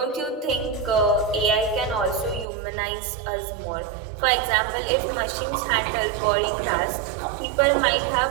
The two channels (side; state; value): left; drops out; at 2.5 s